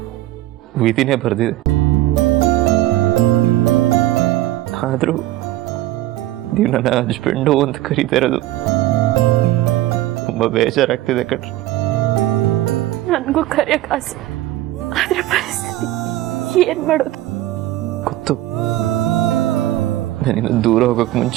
ವಿಧಿನೇ ಬರೆದಿದೆ. ಆದರೂ ನೀವು ನನ್ನ ಹಸ್ಬೆಂಡು ಅಂತ ಕರೀತಾ ಇರೋದು ತುಂಬ ಬೇಜಾರಾಗ್ತಿದೆ ಕಣ್ರಿ. ನನಗೂ ಕರೆಯಕ್ಕೆ ಆಸೆ, ಆದ್ರೆ ಪರಿಸ್ಥಿತಿ ಏನು ಮಾಡೋದು? ಗೊತ್ತು, ನಾನಿನ್ನು ದೂರ ಹೋಗೋಕೆ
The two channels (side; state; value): left; quieter; 15.4 dB